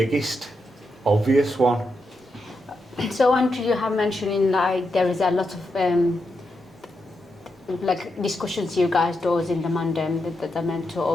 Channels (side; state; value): both; normal; correlation 0.84